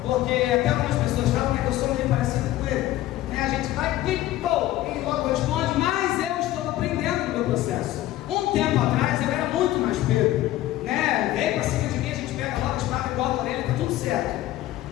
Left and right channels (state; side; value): quieter; right; 14.9 dB